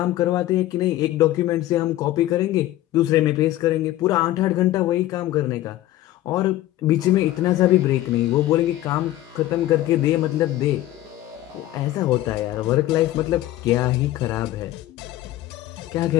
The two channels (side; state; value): right; quieter; 15.0 dB